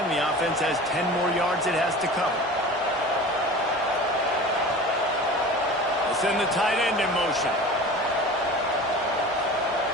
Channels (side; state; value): both; normal; correlation 0.37